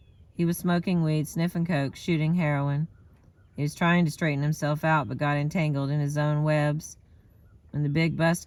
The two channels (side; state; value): both; identical; correlation 1.00